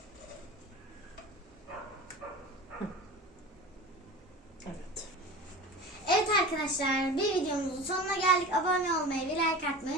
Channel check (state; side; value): normal; both; correlation 0.34